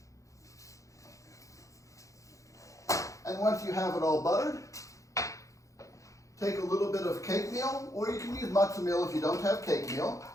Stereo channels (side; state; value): right; late; 0.15 ms